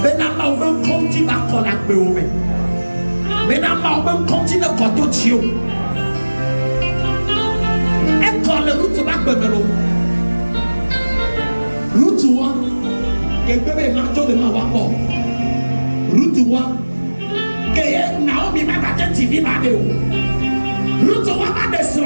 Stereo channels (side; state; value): both; inverted; correlation -1.00